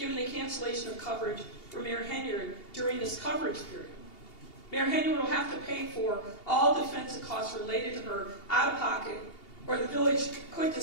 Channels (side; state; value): right; late; 2.8 ms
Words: the cancellation of coverage for Mayor Henyard during this coverage period. Mayor Henyard will have to pay for all defensive costs related to her out of pocket, or the village could